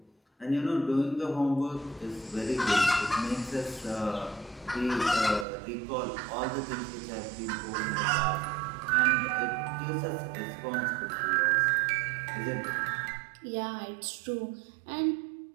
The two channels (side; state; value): left; drops out; at 5.5 s